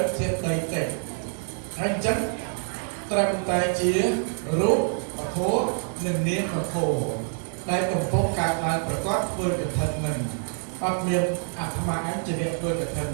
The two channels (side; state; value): left; silent; 55 dB below the other